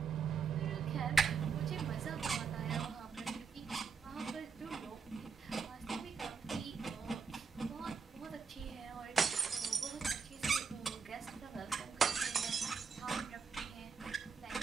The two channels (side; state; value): left; quieter; 5.6 dB